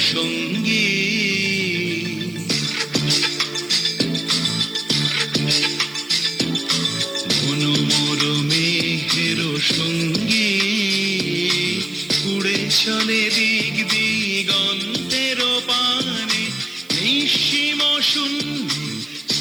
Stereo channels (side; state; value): right; noise; hiss, 25 dB below the sound